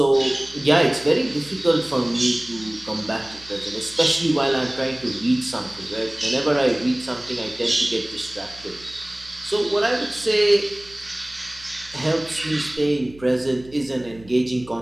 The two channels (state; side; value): noise; right; hum, 22 dB below the sound